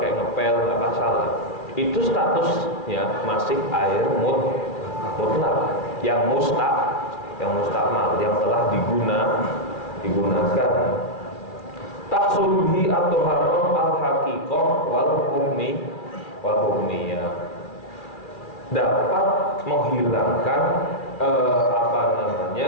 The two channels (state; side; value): late; right; 2.4 ms